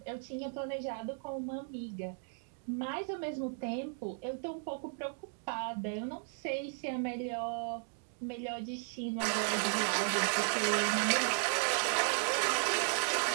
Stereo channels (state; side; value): silent; left; 54 dB below the other